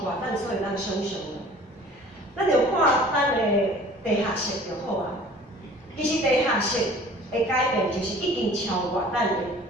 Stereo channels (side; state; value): both; normal; correlation 0.48